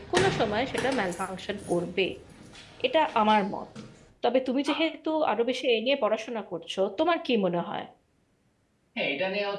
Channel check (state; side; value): identical; both; correlation 1.00